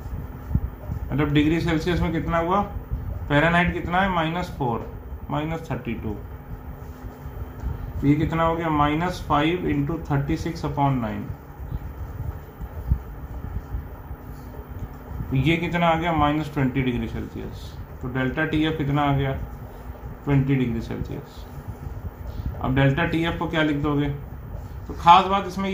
मतलब डिग्री सेल्सियस में कितना हुआ, फ़ारेनहाइट कितना है, -4 -32, ये कितना हो गया, -5 × 36/9। ये कितना आ गया, -20 डिग्री सेल्सियस। तो डेल्टा टी एफ कितना आ गया, 20 डिग्री सेल्सियस। अब डेल्टा टी एफ को क्या लिख दोगे, तो खास बात इसमें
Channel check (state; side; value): identical; both; correlation 1.00